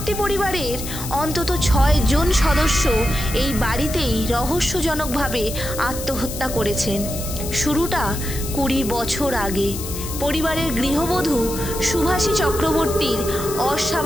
পরিবারের অন্তত 6 জন সদস্য এই বাড়িতেই রহস্যজনকভাবে আত্মহত্যা করেছেন। শুরুটা 20 বছর আগে পরিবারের গৃহবধূ সুভাষী চক্রবর্তীর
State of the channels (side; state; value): left; noise; hiss, 9 dB below the sound